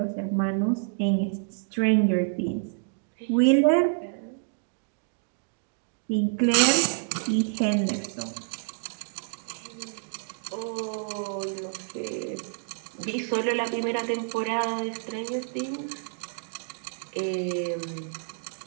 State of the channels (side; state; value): left; silent; digital silence